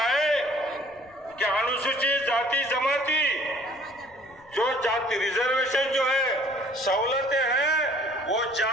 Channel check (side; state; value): left; noise; rumble, 29 dB below the sound